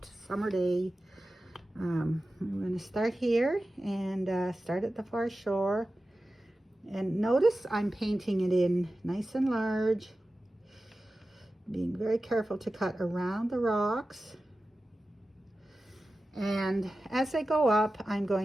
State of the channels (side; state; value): both; normal; correlation 0.94